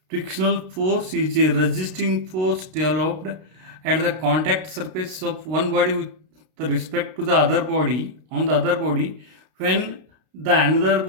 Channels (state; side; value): late; left; 32 ms